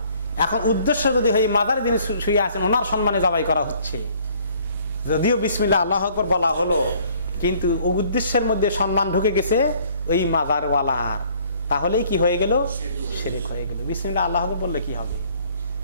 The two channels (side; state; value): both; inverted; correlation -0.59